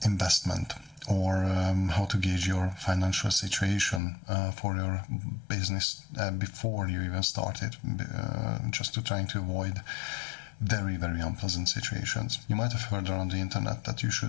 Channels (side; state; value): right; drops out; at 4.0 s